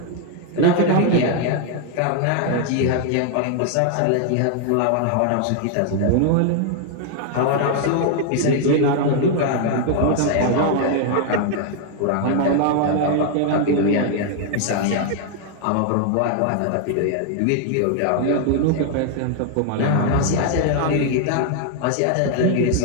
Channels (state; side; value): different; both; correlation 0.00